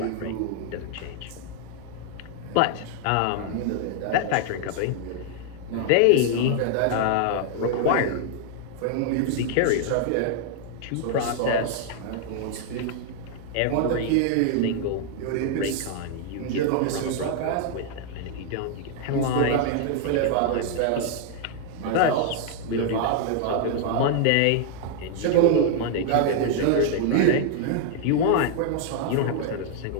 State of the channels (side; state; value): both; different; correlation 0.00